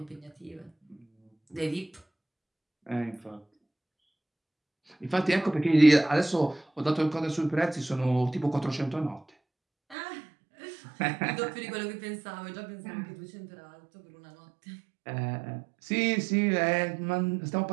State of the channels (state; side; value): drops out; left; at 10.0 s